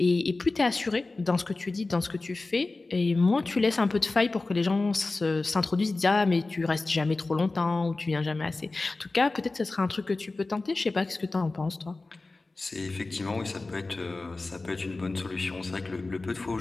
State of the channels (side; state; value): right; quieter; 3.4 dB